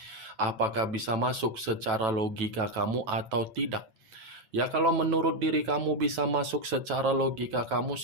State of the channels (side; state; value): left; late; 9.1 ms